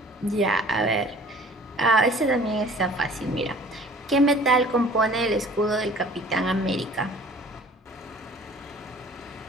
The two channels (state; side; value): normal; both; correlation 0.49